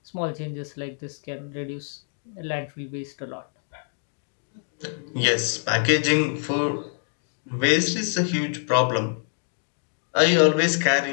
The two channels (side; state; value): right; silent; digital silence